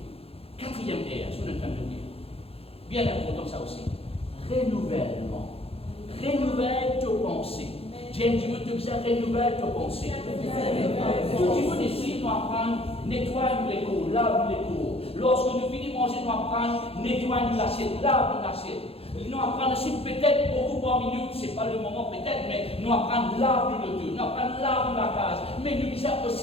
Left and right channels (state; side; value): late; right; 0.28 ms